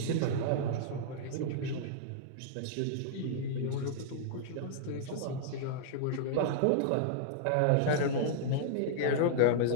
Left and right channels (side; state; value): both; different; correlation -0.02